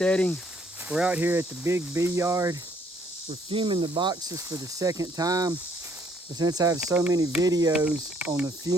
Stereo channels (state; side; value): normal; both; correlation 0.65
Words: We're out here at the Big Bee Yard. We're fuming the boxes for the second time. But since I have so many videos on the